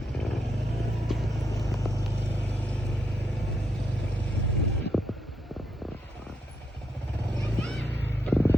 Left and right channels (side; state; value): both; normal; correlation 0.80